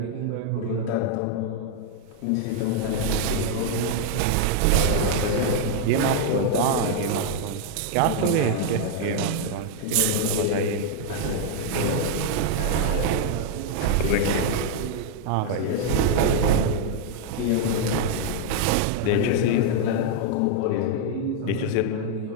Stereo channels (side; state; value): both; different; correlation 0.00